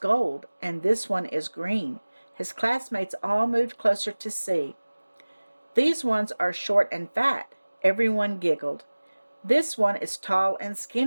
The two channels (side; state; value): both; inverted; correlation -1.00